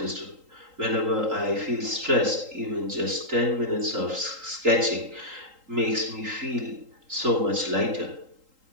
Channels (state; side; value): late; left; 3.8 ms